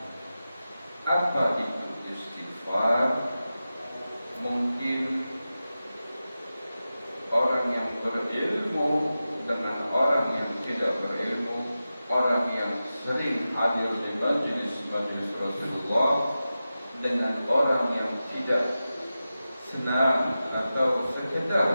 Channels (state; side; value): inverted; both; correlation -0.93